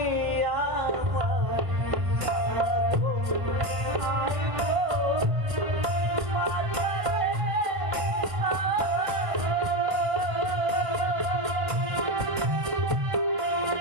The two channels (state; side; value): late; left; 1.5 ms